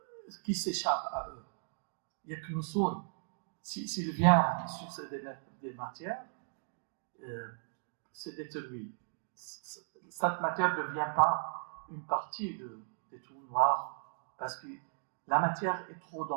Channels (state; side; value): silent; left; digital silence